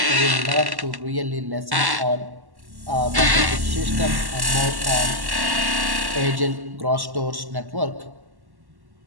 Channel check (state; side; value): late; left; 1.1 ms